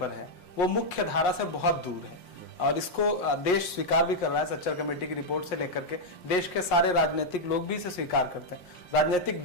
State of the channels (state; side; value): late; right; 5.6 ms